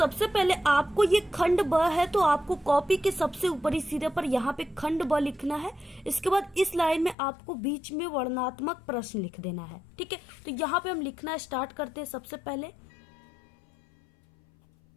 पहले आपको ये खंड ब है, तो आपको कॉपी के सबसे ऊपरी सिरे पर यहाँ पे खंड ब लिखना है। इसके बाद इस लाइन में आपको बीच में वर्णनात्मक प्रश्न लिख देना है, ठीक है। तो यहाँ पे हम लिखना स्टार्ट करते हैं। सबसे पहले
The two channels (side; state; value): right; drops out; at 7.2 s